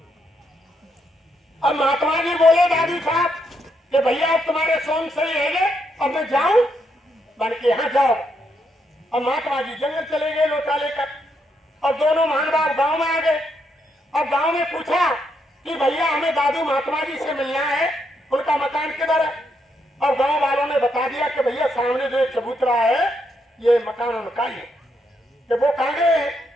अब महात्मा जी बोले दादू साहब कि भैया अब तुम्हारे सोन सही है, अब मैं जाऊं बन के यहाँ जाओ। और महात्मा जी जंगल चले गए लोटा लेकर, और दोनों महानुभाव गांव में आ गए। अब गांव में पूछा कि भैया हमें दादू महात्मा जी से मिलना है, उनका मकान किधर है। और गांव वालों ने बता दिया कि भैया सामने जो चबूतरा है ये मकान उनका ही है। कि वो कहाँ गए हैं,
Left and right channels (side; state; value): both; normal; correlation 0.78